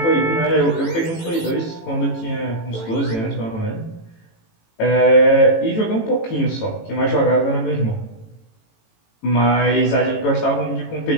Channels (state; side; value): late; right; 18 ms